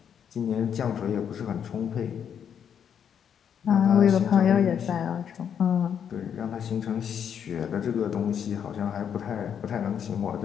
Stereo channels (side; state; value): right; quieter; 8.2 dB